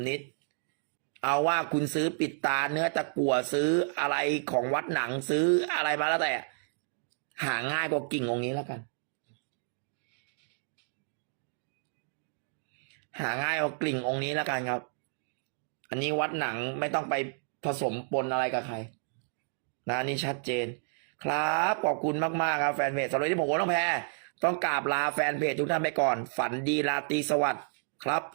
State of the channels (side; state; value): left; silent; digital silence